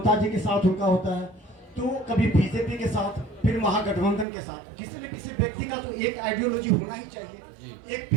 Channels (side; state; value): left; drops out; at 4.2 s